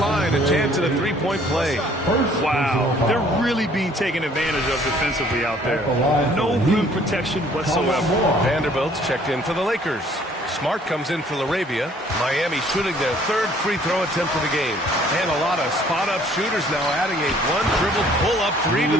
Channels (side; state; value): both; normal; correlation 0.58